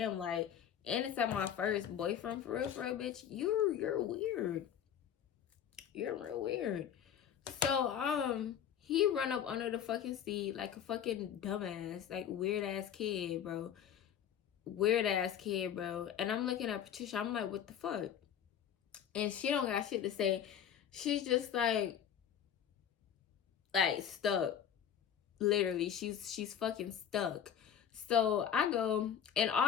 like, and it's at my first boyfriend, for real, bitch, you're weird. You're real weird. So, he run up under the fucking seat like a fucking dumbass, like weird ass kid, bro. Weird ass kid, bro. And I'm looking at Patricia, I'm like, what the fuck? And she don't got shit to say. She's just like stuck. Literally, she's fucking stuck. So I go, and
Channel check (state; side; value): quieter; right; 9.1 dB